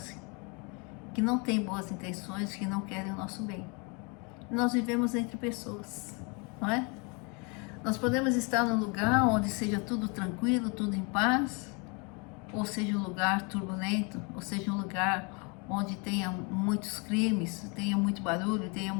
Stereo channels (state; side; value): quieter; right; 32.1 dB